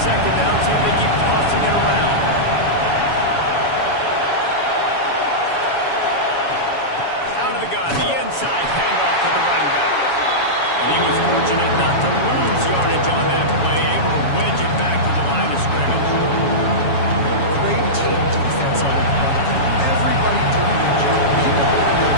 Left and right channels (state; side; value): late; right; 7.2 ms